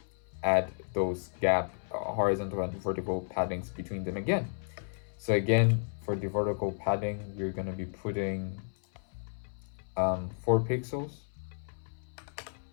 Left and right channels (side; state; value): right; silent; 56 dB below the other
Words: add those gap horizontal and vertical paddings between them again. So again, for the vertical padding, we're going to be putting 4 pixels,